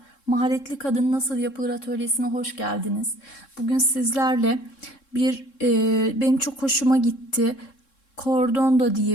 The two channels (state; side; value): late; right; 3.7 ms